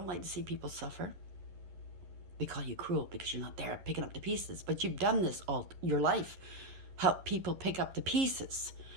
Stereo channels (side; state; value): left; late; 11 ms